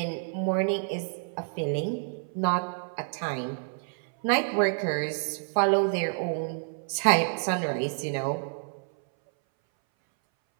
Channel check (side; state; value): left; silent; 59 dB below the other